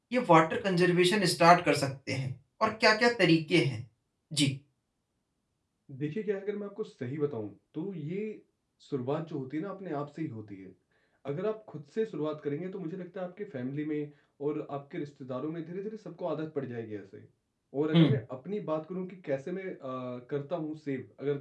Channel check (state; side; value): identical; both; correlation 1.00